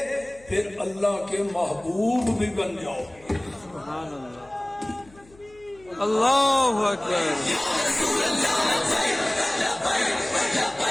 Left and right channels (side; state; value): left; noise; hum, 26 dB below the sound